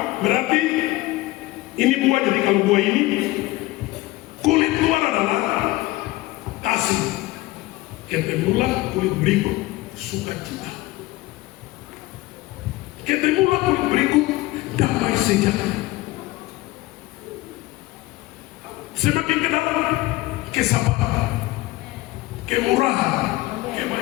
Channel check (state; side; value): quieter; right; 19.1 dB